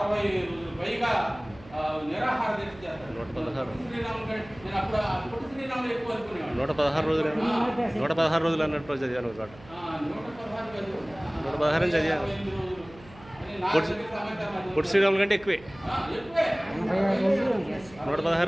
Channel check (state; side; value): noise; right; hum, 21 dB below the sound